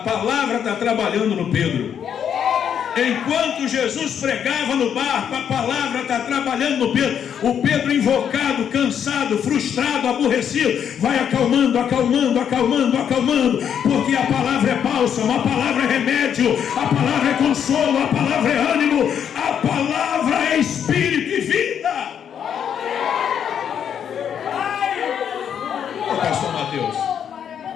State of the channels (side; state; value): right; quieter; 8.5 dB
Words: está trabalhando no Pedro. Enquanto Jesus pregava no barco, a palavra está trabalhando no Pedro. O Pedro invocado, cansado, frustrado, aborrecido, vai acalmando, porque a palavra é bálsamo, a palavra é remédio, a palavra é consolo, a palavra é ânimo, a palavra é espírito e vida. Ô, pastor Mateus,